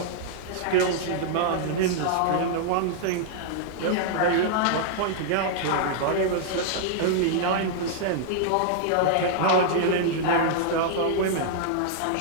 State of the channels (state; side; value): different; both; correlation -0.01